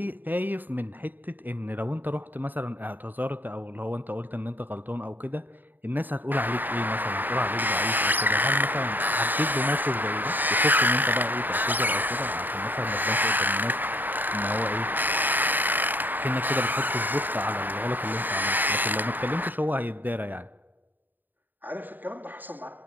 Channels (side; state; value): left; late; 0.089 ms